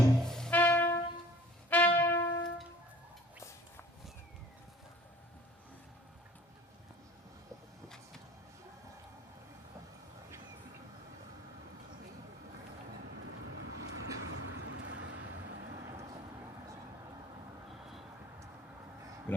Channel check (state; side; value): normal; both; correlation 0.49